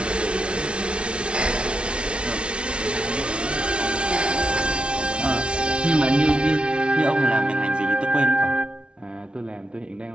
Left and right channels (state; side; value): late; left; 0.058 ms